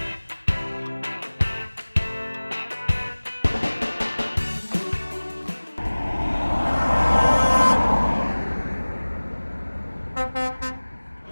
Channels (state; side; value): inverted; both; correlation -1.00